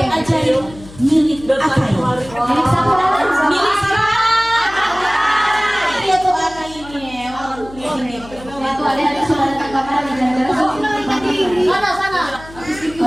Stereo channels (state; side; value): noise; left; hum, 18 dB below the sound